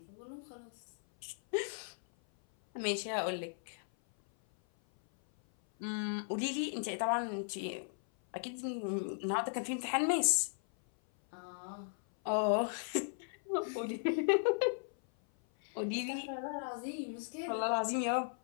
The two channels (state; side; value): silent; right; 53 dB below the other